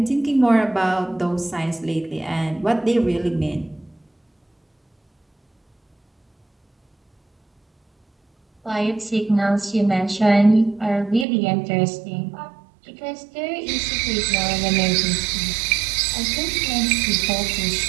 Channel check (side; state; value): left; drops out; at 11.2 s